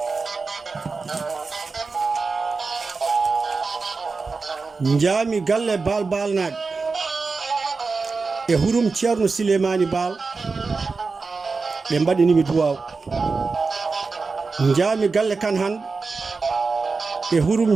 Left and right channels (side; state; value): left; quieter; 4.3 dB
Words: Jaami galle balnaɓe e hurum ceerno Silemani Baal. Ɓe mbaɗinimi duwaw. Jaami galle kan hande e hurum